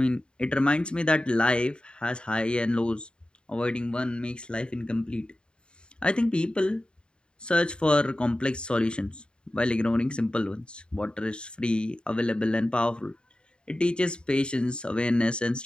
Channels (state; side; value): late; right; 0.051 ms